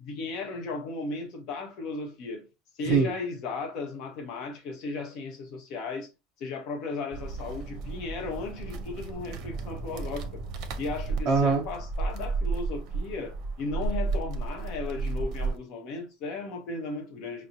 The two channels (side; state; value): both; normal; correlation 0.49